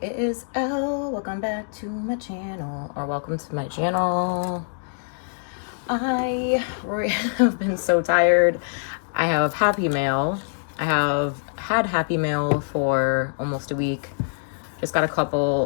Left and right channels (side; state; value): right; silent; digital silence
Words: it is Elle. Welcome back to my channel, or welcome to my channel. I have been so tired. I have Happy Mail. I have had Happy Mail for almost a week. Just got a